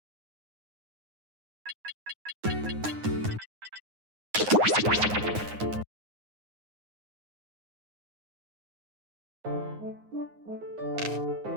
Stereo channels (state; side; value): late; left; 9.6 ms